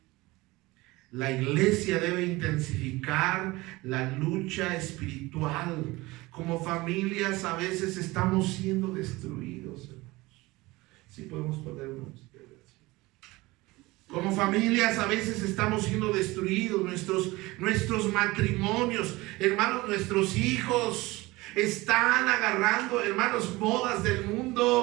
La iglesia debe intensificar la lucha espiritual. Como familias a veces estamos siendo destruidos, hermanos. Sí podemos poner unos. Como familias a veces estamos siendo destruidos. Nuestros matrimonios, hermanos, nuestros hijos están agarrando, hermanos, modas del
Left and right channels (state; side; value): quieter; left; 21.0 dB